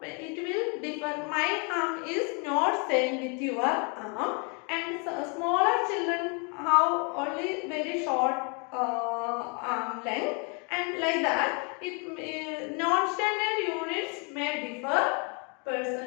it will differ. My arm is not same with your arm, and smaller children have only very short arm length, and like that, non-standard units may differ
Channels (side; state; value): right; quieter; 35.0 dB